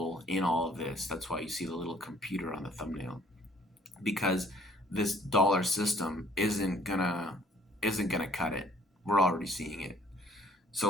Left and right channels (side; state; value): both; normal; correlation 0.59